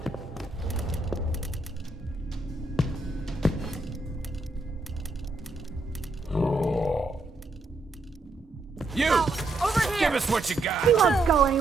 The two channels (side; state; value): left; quieter; 3.0 dB